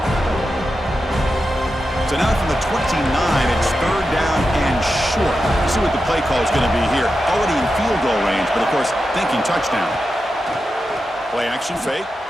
So now from the 29, it's 3rd down and short. You see what the play call is going to be here. Already in field goal range, but of course, thinking touchdown. Play action fake.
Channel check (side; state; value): both; normal; correlation 0.90